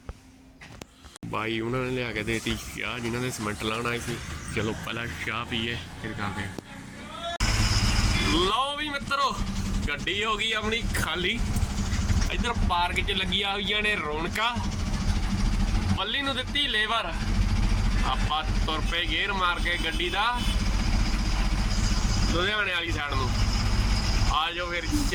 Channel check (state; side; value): identical; both; correlation 1.00